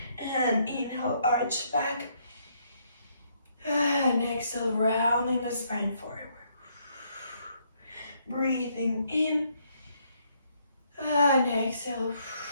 And inhale, arch back. And exhale, rounding the spine forward. Breathing in. And exhale.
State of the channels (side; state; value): both; inverted; correlation -0.71